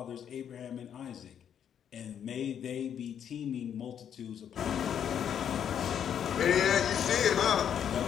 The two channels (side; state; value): right; quieter; 8.8 dB